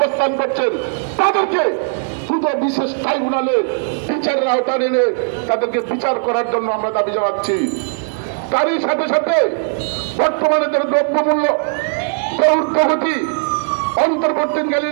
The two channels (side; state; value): left; silent; 66 dB below the other